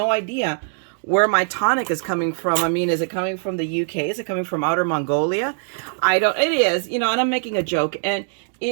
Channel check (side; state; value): left; silent; digital silence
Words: idea where my tonic is coming from. I mean, is it coming from the UK? Is it coming from outer Mongolia? It is, and I'm making a joke, and